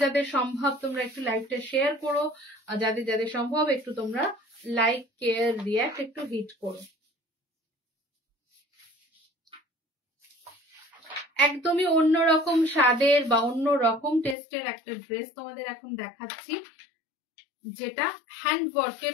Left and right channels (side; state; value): right; drops out; at 14.4 s